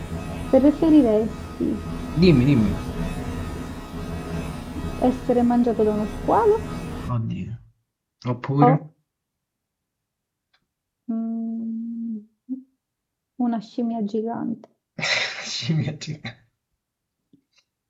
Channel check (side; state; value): both; identical; correlation 1.00